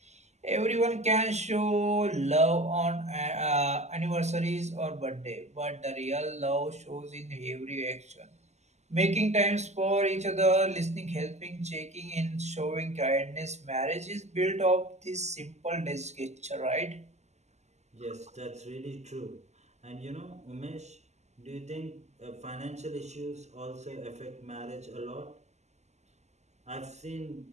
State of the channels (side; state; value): left; late; 0.33 ms